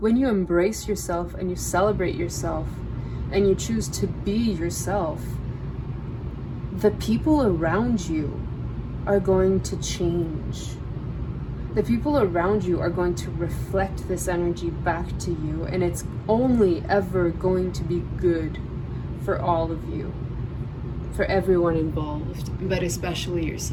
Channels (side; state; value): both; identical; correlation 1.00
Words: when you embrace yourself and you celebrate yourself and you choose to be yourself, the people around you are going to change. The people around you are going to reflect this energy back to you, and it's only ever going to be good for all of you, for everyone involved, but especially